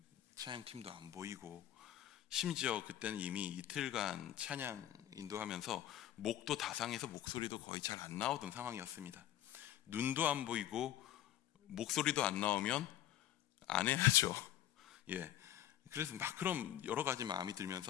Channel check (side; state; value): right; quieter; 12.5 dB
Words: 찬양팀도 안 보이고 심지어 그때는 이미 이틀간 찬양 인도하면서 목도 다상해서 목소리도 거의 잘 안 나오던 상황이었습니다. 눈도 안 보이고 목소리도 안 나오면 안 해야죠. 그래서 막 그럼 여러 가지 마음이